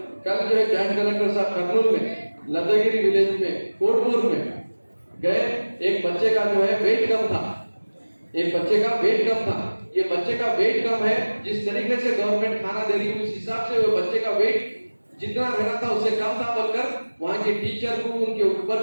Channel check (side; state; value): both; inverted; correlation -1.00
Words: जो है जॉइंट कलेक्टर साहब कर्नूल में लद्दागिरी विलेज में कोटपुर में गए, एक बच्चे का जो है वेट कम था, एक बच्चे का वेट कम था। ये बच्चे का वेट कम है, जिस तरीके से गवर्नमेंट खाना दे रही है उस हिसाब से वो बच्चे का वेट जितना रहना था उससे कम था, बोलकर वहां के टीचर को, उनके